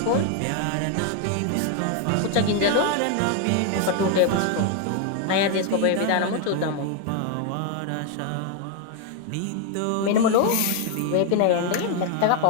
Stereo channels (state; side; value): different; both; correlation 0.00